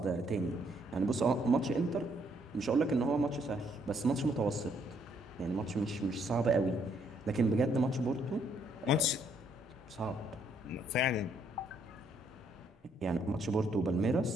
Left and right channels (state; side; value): normal; both; correlation 0.70